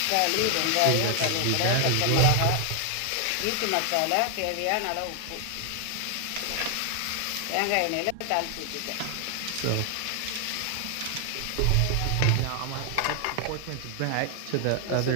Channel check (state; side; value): different; both; correlation 0.00